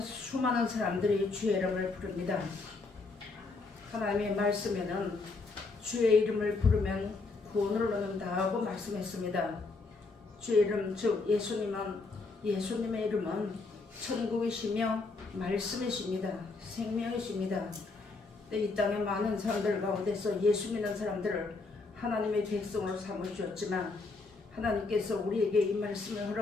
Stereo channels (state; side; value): quieter; right; 3.8 dB